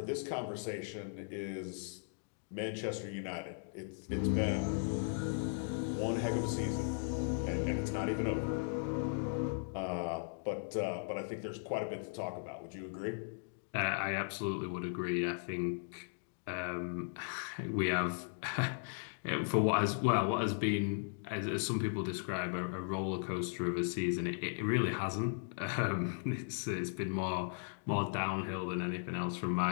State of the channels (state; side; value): silent; right; digital silence